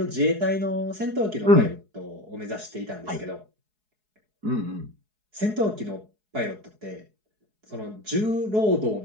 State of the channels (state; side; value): late; left; 4.7 ms